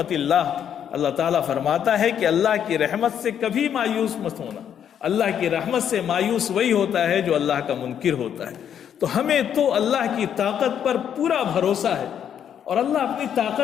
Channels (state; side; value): quieter; right; 9.0 dB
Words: اللہ، اللہ تعالیٰ فرماتا ہے کہ اللہ کی رحمت سے کبھی مایوس مت ہونا، اللہ کی رحمت سے مایوس وہی ہوتا ہے جو اللہ کا منکر ہوتا ہے۔ تو ہمیں تو اللہ کی طاقت پر پورا بھروسہ ہے، اور اللہ اپنی